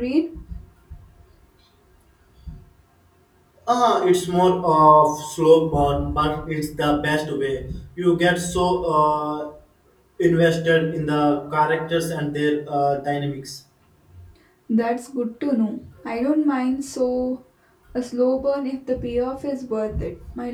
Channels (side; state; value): both; identical; correlation 1.00